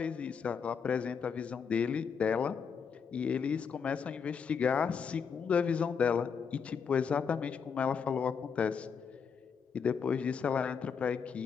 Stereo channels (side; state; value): right; quieter; 6.4 dB